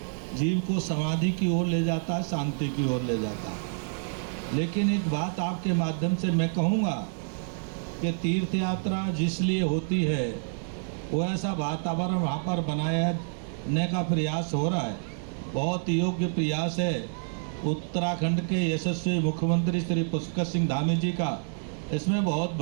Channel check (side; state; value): left; silent; 59 dB below the other